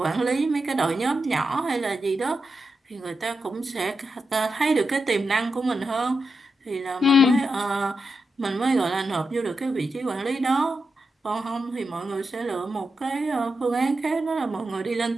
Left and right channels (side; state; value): both; normal; correlation 0.88